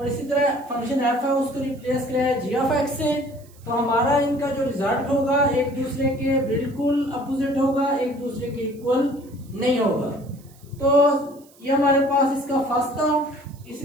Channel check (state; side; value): noise; right; hiss, 27 dB below the sound